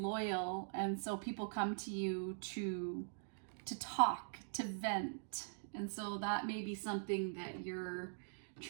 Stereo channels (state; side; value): silent; left; digital silence